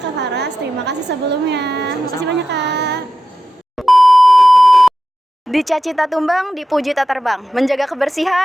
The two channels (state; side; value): normal; both; correlation 0.91